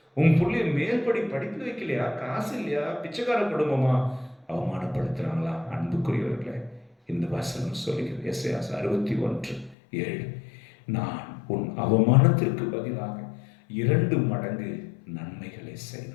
உன் பிள்ளைய மேல்படி படிப்பு வைக்கலையா, காசு இல்லையா, பிச்சைக்கார குடும்பமா, அவமானப்படுத்துறாங்களா? அன்புக்குரியவர்களே, இந்த வசனம் சொல்கிறது, எஸ்ஐயா 61:7, நான் உன் அவமானத்திற்கு பதிலாக 2 மடங்கு நன்மைகளை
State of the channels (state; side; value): drops out; right; at 9.8 s